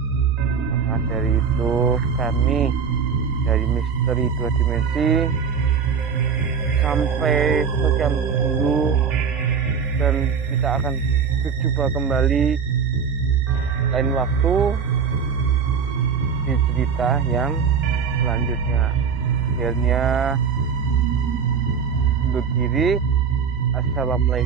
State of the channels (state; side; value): quieter; left; 6.4 dB